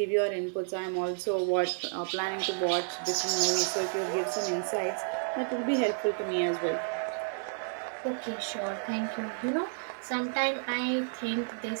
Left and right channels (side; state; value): left; silent; 57 dB below the other